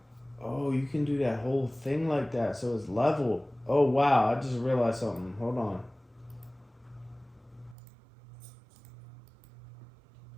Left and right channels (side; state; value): left; drops out; at 7.8 s